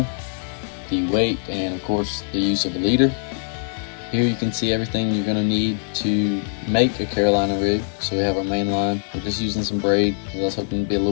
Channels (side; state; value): right; silent; digital silence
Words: the weight, and of course the use of a leader. Here you can see everything you're going to need to make a Carolina rig. So we have our main line. We're just using some braid because I was hoping to be a little